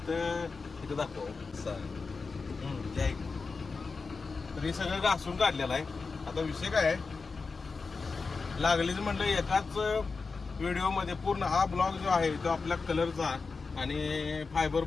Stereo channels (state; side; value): quieter; right; 4.5 dB